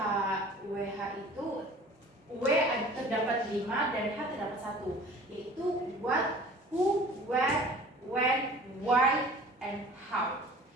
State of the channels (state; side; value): normal; both; correlation 0.46